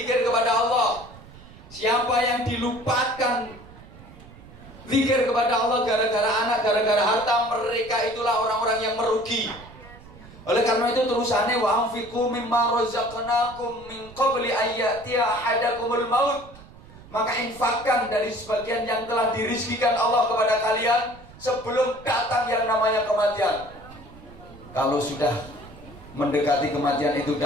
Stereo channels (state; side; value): noise; right; rumble, 20 dB below the sound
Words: kepada Allah. Siapa yang dilupakan zikir kepada Allah gara-gara anak, gara-gara harta, mereka itulah orang-orang yang merugi. Oleh karena itu terusannya wa anfiqu mimma razaqnakum min qabli ayyatiya ahadakumul maut. Maka infakkan dari sebagian yang telah dirizkikan Allah kepada kalian sebelum datang yang namanya kematian. Kalau sudah mendekati kematian itu